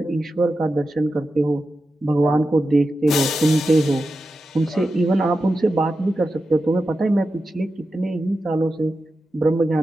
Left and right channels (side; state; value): both; normal; correlation 0.91